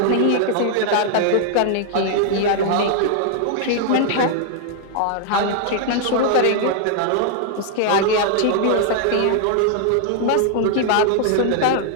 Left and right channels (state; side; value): different; both; correlation 0.00